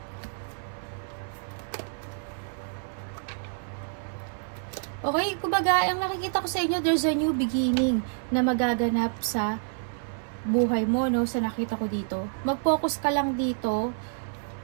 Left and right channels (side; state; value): left; silent; 56 dB below the other